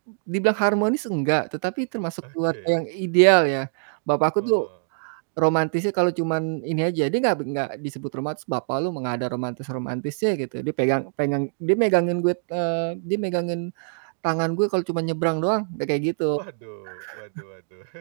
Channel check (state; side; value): silent; left; digital silence